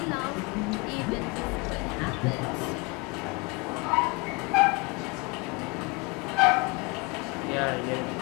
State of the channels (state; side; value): quieter; right; 27.8 dB